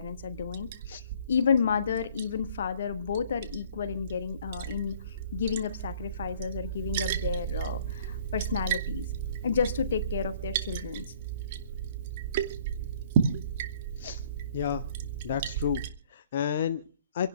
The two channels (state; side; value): inverted; both; correlation -0.56